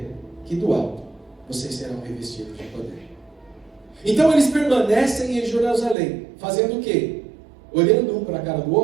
que do alto vocês serão revestidos de poder. Então eles permanecem em Jerusalém, fazendo o quê? Olhando um para a cara do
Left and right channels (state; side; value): drops out; left; at 6.0 s